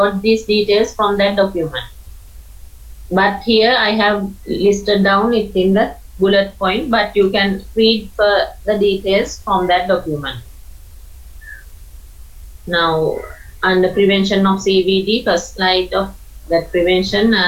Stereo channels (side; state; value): both; identical; correlation 1.00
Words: these details from that document. But here I have listed down it in the bullet point, but you can read the details from that document. Now, under prevention of CVD, first slide of that prevention,